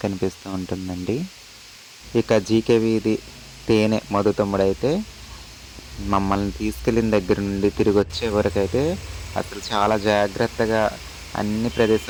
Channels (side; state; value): both; identical; correlation 1.00